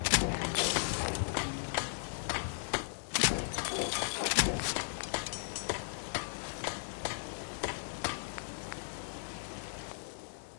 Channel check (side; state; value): right; silent; digital silence